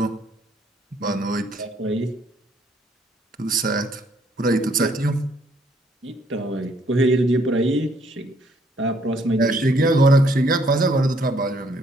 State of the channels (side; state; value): both; normal; correlation 0.66